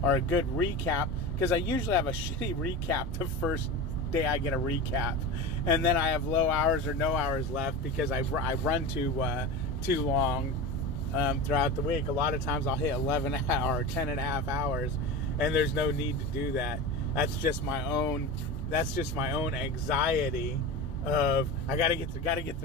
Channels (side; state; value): both; normal; correlation 0.27